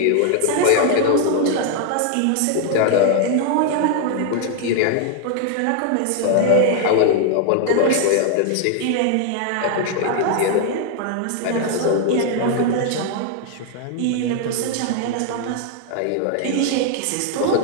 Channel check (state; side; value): different; both; correlation 0.00